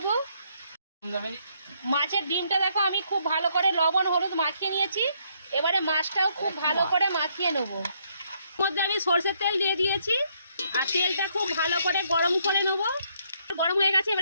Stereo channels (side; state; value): both; inverted; correlation -0.71